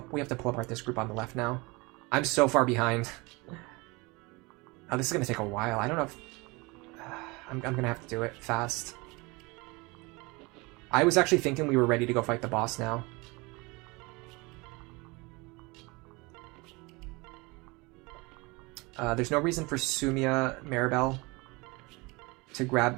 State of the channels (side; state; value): left; quieter; 25.6 dB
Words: this group on the left now. I'm so far behind. Oh, this is going to take a while. I don't know if... I'm going to have to do it fast. I was actually thinking we were ready to go fight the boss now. There's no reason for Sumia Maribel to